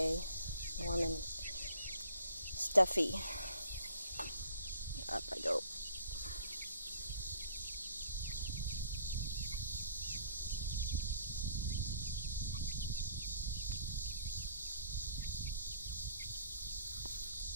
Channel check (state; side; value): inverted; both; correlation -0.56